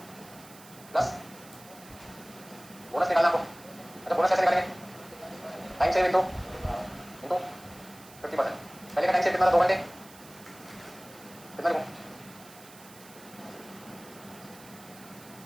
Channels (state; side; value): noise; right; hiss, 20 dB below the sound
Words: प्लस बोनस निकालना आपको। अच्छा बोनस कैसे निकालेंगे? Time save into 50%। पहले का टाइम सेव कितना था? 2 घंटे। कितना लिखूं?